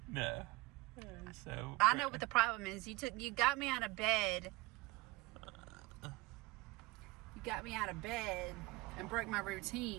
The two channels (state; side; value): quieter; left; 22.2 dB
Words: No. So I know what the problem is. You got me out of bed. You got me out of bed and broke my